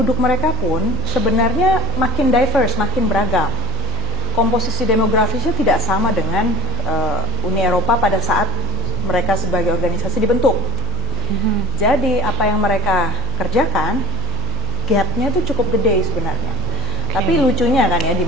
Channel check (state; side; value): noise; left; hum, 8 dB below the sound